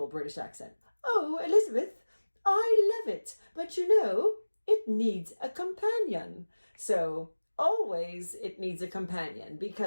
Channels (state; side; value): inverted; both; correlation -1.00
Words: British accent. "Oh, Elizabeth, I love it, but you know, it needs a companion." So always it needs a companion,